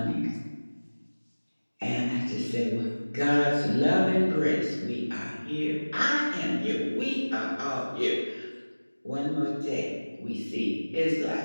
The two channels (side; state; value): both; inverted; correlation -1.00